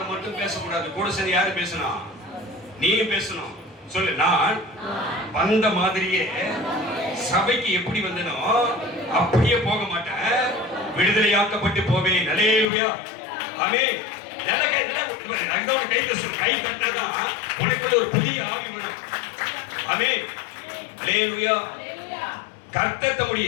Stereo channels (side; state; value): right; drops out; at 12.7 s